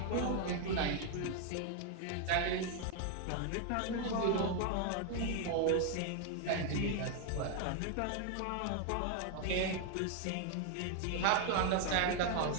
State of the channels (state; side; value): different; both; correlation 0.00